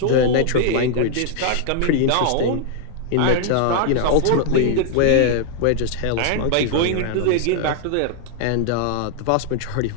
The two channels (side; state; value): both; different; correlation 0.00